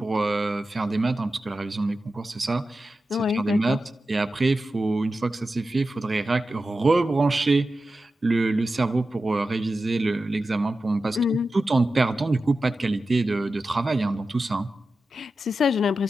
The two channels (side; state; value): both; normal; correlation 0.92